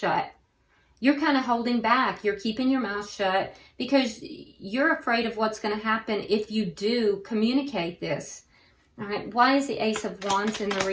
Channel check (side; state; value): both; identical; correlation 1.00